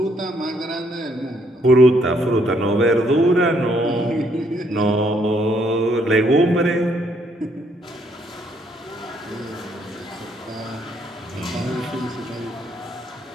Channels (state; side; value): normal; both; correlation 0.70